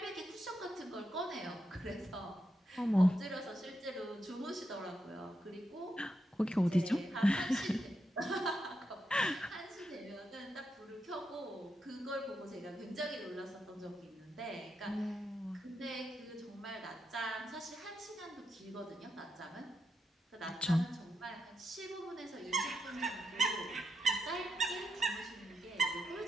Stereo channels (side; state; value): both; normal; correlation 0.84